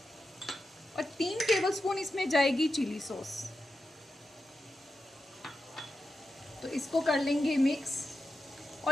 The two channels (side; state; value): both; normal; correlation 0.89